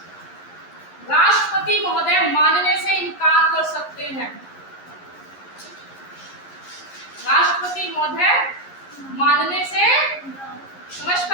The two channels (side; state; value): right; late; 11 ms